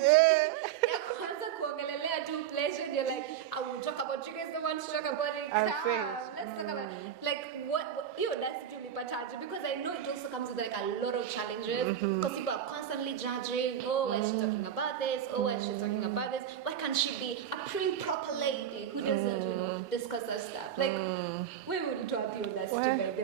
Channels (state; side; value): quieter; left; 9.6 dB